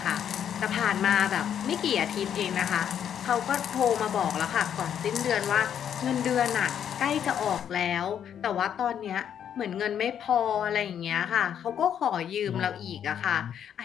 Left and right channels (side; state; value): right; quieter; 9.0 dB